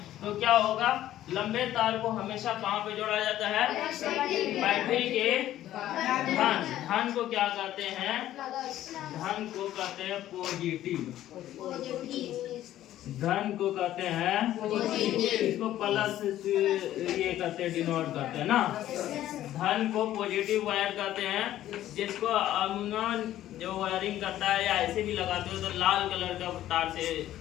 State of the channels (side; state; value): right; quieter; 13.1 dB